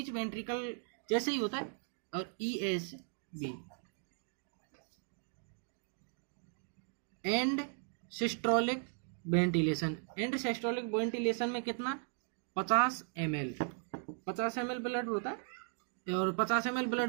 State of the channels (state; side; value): silent; left; 53 dB below the other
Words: वेंट्रिकल जैसे ही होता है, और ESB and systolic ventilation. And systolic ventilation में कितना, 50 ml ब्लड होता है। और 50 ml